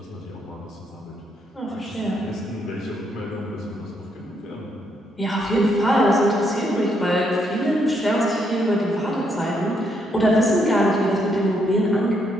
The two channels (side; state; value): both; normal; correlation 0.75